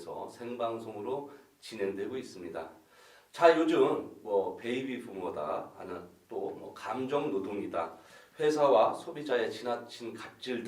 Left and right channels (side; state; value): both; identical; correlation 1.00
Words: 생방송으로 진행되고 있습니다. 자, 요즘 베이비 부모다 하는 또 감정 노동이다, 회사와 소비자의 지나친 갑질